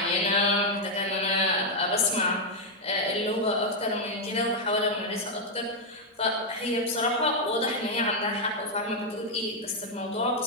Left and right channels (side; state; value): both; normal; correlation -0.01